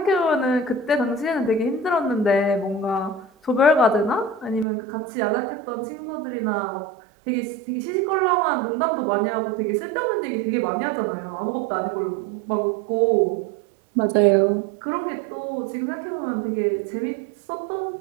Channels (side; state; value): left; drops out; at 4.7 s